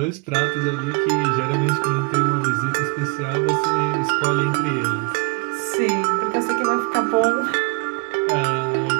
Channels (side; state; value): left; quieter; 30.7 dB